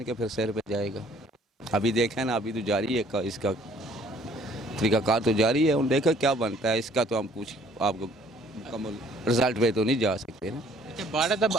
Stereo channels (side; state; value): both; normal; correlation 0.59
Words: के फिर सिर पे जाएगा। अभी देखें ना, अभी तो जारी है इसका तरीक़ाकार तो जारी है। उन देखा क्या बनता है इसका, तो हम कुछ आपको मुकम्मल रिजल्ट पे तो नहीं जा सकते ना। अच्छा, भारत अब